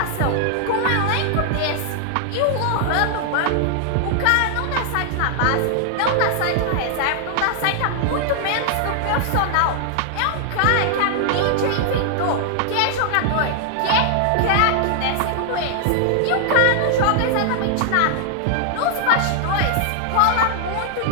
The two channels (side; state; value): both; different; correlation -0.01